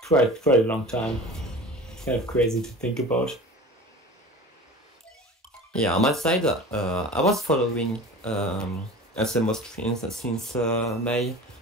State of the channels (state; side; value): normal; both; correlation 0.37